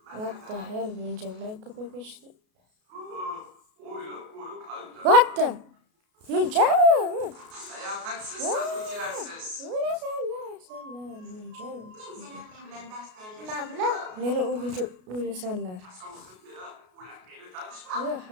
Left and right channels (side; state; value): left; late; 33 ms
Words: What the hell, munchalar ko'payib ketishdi. What the? Muncha? Layoqatsiz sotuvchilarsiz. O'lasanlar, muncha. Meni o'lguncha o'lasanlar.